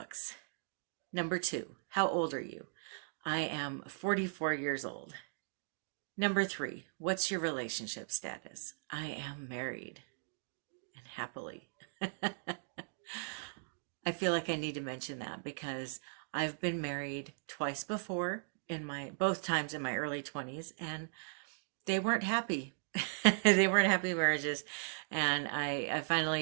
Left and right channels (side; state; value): left; silent; digital silence